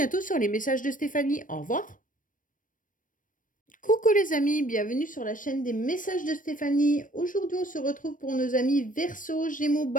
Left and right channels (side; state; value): right; late; 0.38 ms